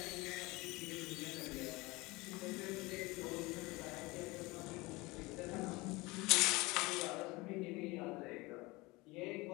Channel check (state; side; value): quieter; right; 22.9 dB